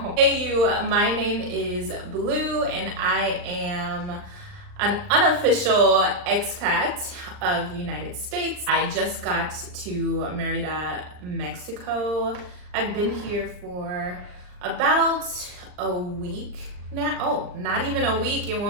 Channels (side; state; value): left; late; 39 ms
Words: Hey you, my name is Blue and I am an unofficial expat of the United States. I just got to Merida, Mexico. I've been here for about a week now. Oh, not even a week. It